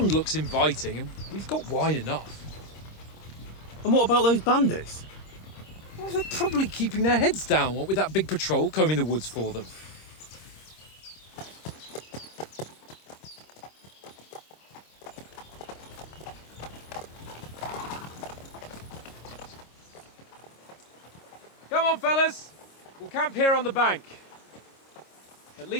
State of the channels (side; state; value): right; late; 26 ms